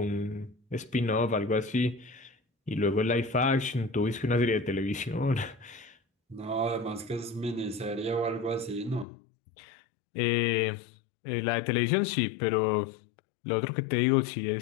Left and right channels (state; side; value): drops out; right; at 9.1 s